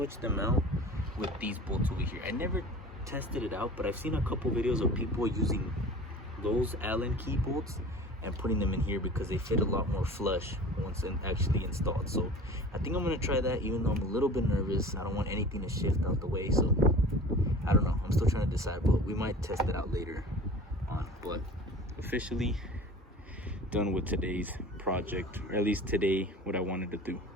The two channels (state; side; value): normal; both; correlation 0.40